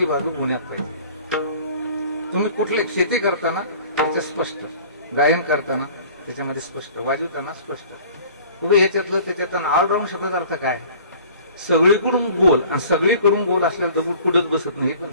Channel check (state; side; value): inverted; both; correlation -0.48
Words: बाजू गुण्यात पाहिजे. तुम्ही कुठले शेती करताना त्याच्या स्पष्ट, गायन करताना त्याच्यामध्ये स्पष्ट, वाजवताना स्पष्ट. उभे ह्याच्यातलं त्याच्यात ऑलराऊंड शब्दाचा अर्थ काय, सगळीकडून गोल, आणि सगळीकडून गोल असलेला दगड कुठंच बसत नाही हे पण